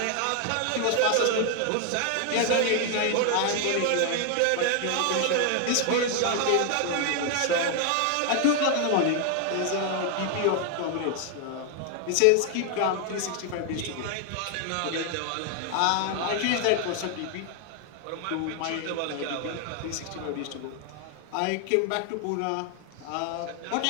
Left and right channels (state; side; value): different; both; correlation 0.00